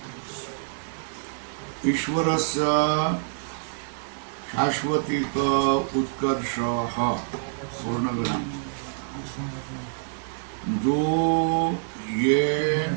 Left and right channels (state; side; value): silent; left; 61 dB below the other